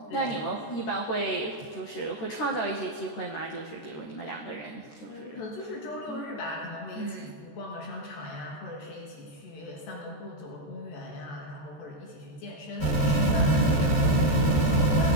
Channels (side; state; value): right; late; 13 ms